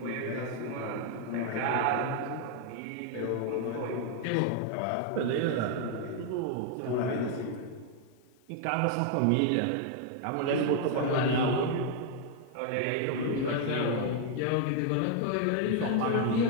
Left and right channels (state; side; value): different; both; correlation 0.00